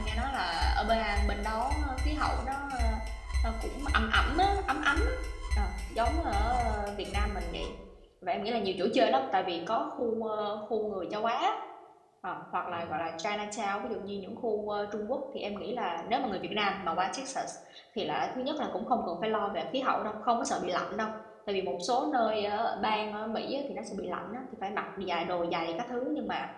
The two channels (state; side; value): identical; both; correlation 1.00